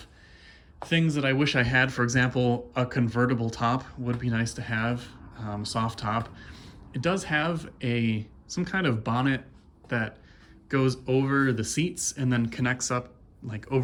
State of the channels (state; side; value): identical; both; correlation 1.00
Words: things that I wish I had. For example, a convertible top would be nice to have, soft top. It does have some kind of bonnet that goes over the seats and then connects up like